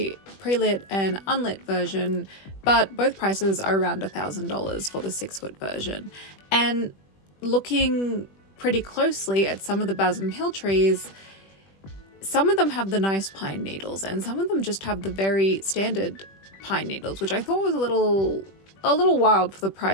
and unlit version, but both prices are around $1,000 for the 6-foot version. And looking pretty closely at some of the Basem Hill trees, some of them have the nice pine needles and some of them just have the very standard pine needles, which I thought was a little wild for the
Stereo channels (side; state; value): right; late; 21 ms